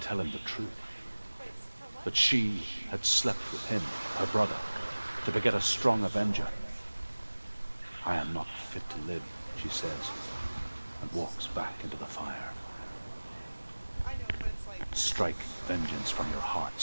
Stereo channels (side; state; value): both; inverted; correlation -1.00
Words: him the truth. That she had slept with him, her brother, to beget a strong avenger. I am not fit to live, she says, and walks back into the fire. Strike vengeance from your heart,